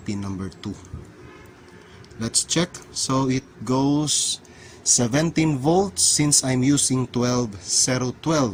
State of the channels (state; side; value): identical; both; correlation 1.00